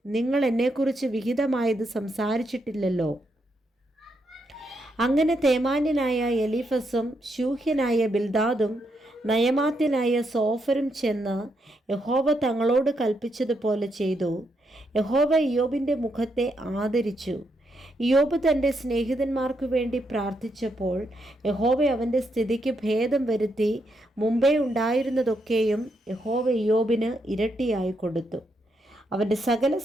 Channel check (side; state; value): both; normal; correlation 0.80